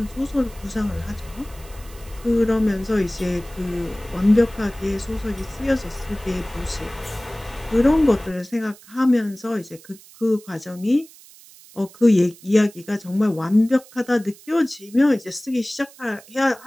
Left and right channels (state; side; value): noise; right; hiss, 22 dB below the sound